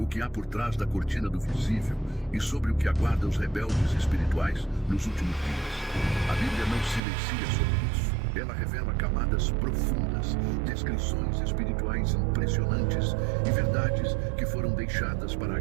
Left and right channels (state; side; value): drops out; left; at 7.0 s